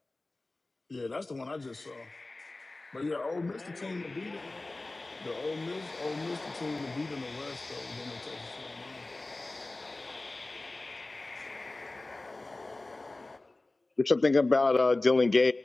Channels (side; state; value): right; quieter; 3.0 dB